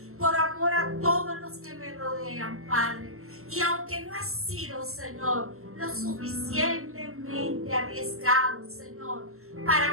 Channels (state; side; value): late; left; 0.63 ms